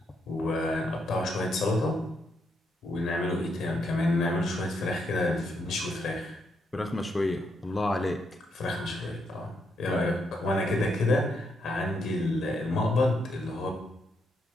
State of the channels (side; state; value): both; normal; correlation 0.78